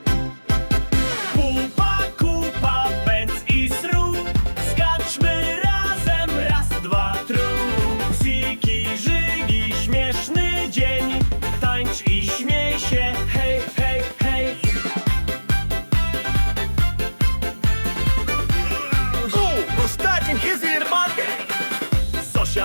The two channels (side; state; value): both; inverted; correlation -1.00